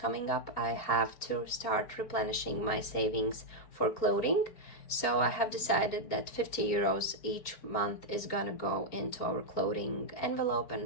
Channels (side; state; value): right; late; 4.8 ms